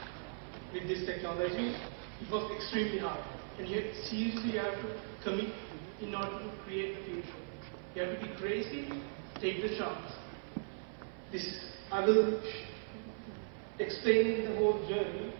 with this technology. It was extremely hard. And yet, seriously, you have to commit in order to create the future. You have to be crazy, take the chance. I will explain the whole journey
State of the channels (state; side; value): silent; left; 52 dB below the other